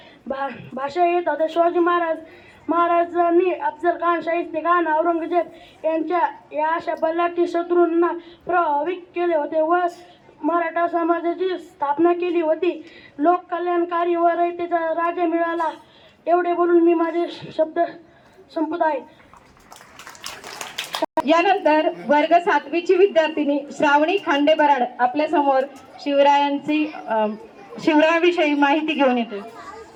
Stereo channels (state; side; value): identical; both; correlation 1.00